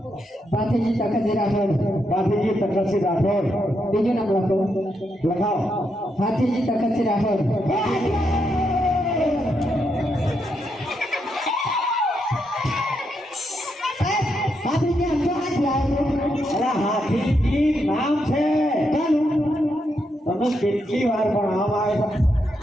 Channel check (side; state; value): both; normal; correlation 0.81